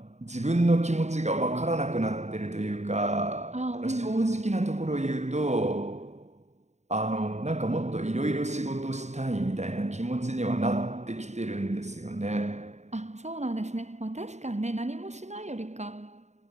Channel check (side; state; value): left; late; 0.33 ms